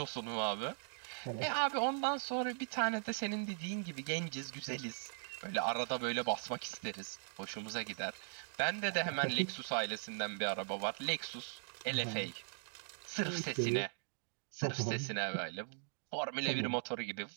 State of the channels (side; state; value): left; silent; digital silence